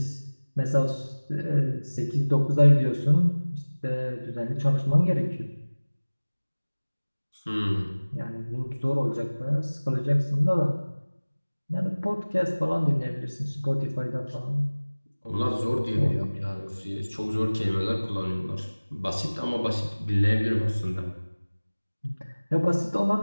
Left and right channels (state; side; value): inverted; both; correlation -1.00